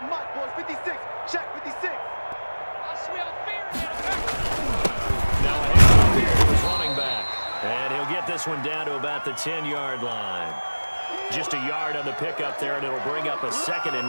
Mike, boys. 56. Check 56. I smell fear. Now a handoff here to his running back. And he'll get this one down to about the 10-yard line. Just a yard on the pickup there, and it'll bring up a 2nd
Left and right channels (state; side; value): inverted; both; correlation -1.00